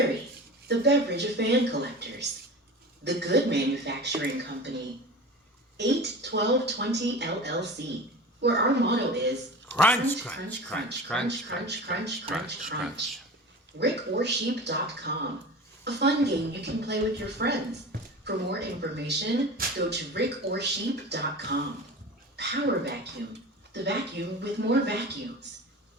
the beverage of fan collectors, The Good Manufacturing Company, 81220 LLC, where our motto is crunch, crunch, crunch, crunch, crunch, crunch, crunch, crunch. RickOrSheep.com, a fun game you can play with your friends. For more information, go to RickOrSheep.com. Power Vacuum, the vacuum with more vacuums.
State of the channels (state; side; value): normal; both; correlation 0.34